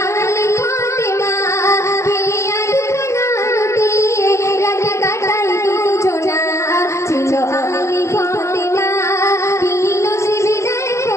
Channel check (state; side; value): late; right; 0.14 ms